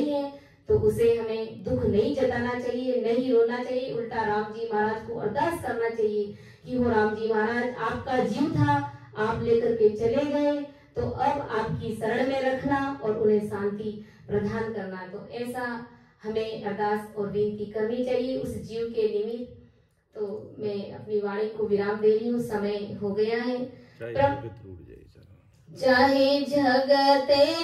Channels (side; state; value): both; identical; correlation 1.00